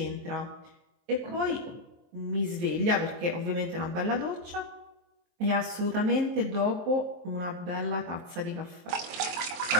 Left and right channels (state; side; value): late; left; 23 ms